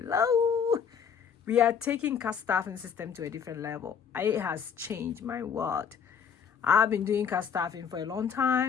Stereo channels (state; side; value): quieter; right; 7.2 dB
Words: We are taking cast staffing system to a different level. It has changed my world. I've been doing cast staffing for a long